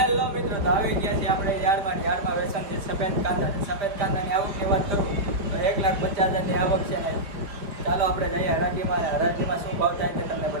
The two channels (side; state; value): left; late; 4.7 ms